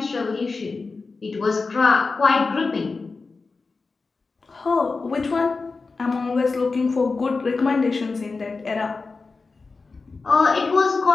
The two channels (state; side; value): quieter; right; 4.1 dB